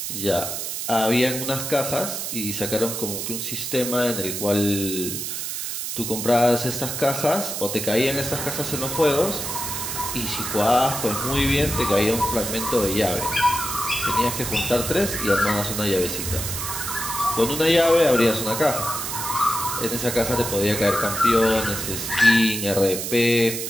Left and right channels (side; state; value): right; noise; hiss, 4 dB below the sound